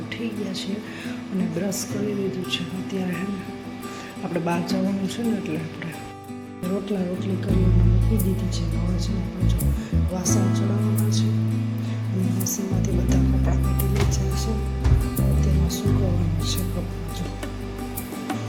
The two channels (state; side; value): identical; both; correlation 1.00